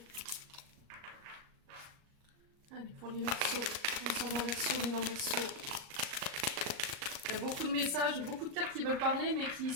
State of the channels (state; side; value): late; left; 38 ms